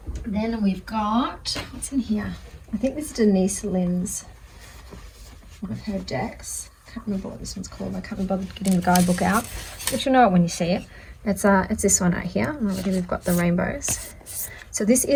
Then we've got, what's in here? I think this is Denise Lynn's, one of her decks. Can't remember what this one's called. I can't be bothered getting the guidebook out, but you'll know it when you see it. It's this one right here. And already we've got the rainbows. So this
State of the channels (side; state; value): both; identical; correlation 1.00